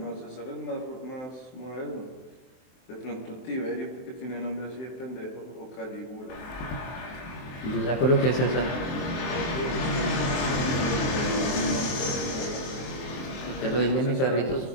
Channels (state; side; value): late; right; 23 ms